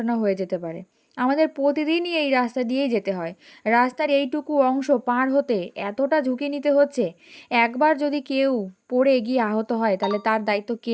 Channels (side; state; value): both; identical; correlation 1.00